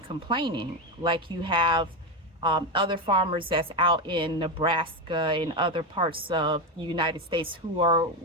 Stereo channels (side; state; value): both; normal; correlation 0.12